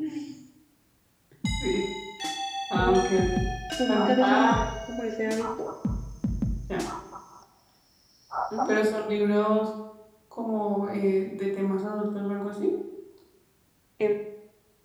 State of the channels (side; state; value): both; identical; correlation 1.00